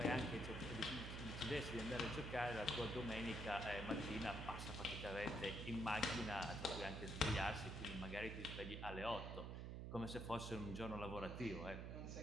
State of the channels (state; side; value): noise; right; hum, 5 dB below the sound